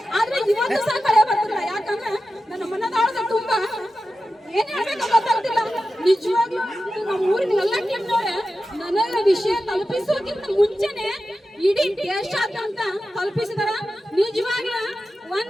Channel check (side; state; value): both; normal; correlation 0.92